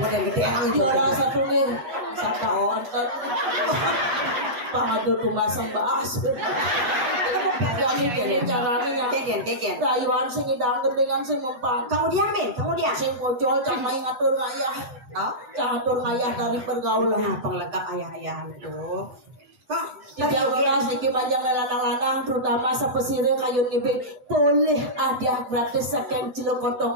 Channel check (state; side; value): late; left; 8.1 ms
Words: gede emang itu. Juara satu nih. Sata onten. Pangadu tumasang baas. Jadi kene carane Keken. rayuan sing idang dengan sing mempan. Kamu diam, Ben. Kamu diam. Sing pocol cang main ngatur ngayah. Oh, Cang ngatur ngayah dari pergaulan. nah, penglengkap ayah-ayah itu. Kak, Tiga belas niki panjang lanang-lanang terutama sepesire kayu ngibing boleh ada gratis saking